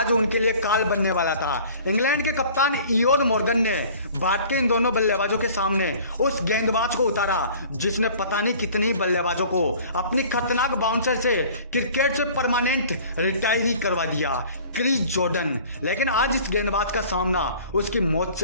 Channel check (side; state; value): both; inverted; correlation -0.48